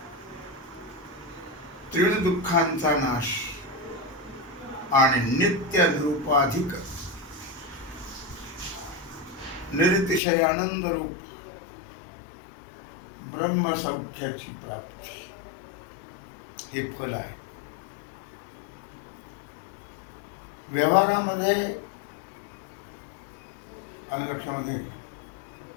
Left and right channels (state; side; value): drops out; right; at 10.2 s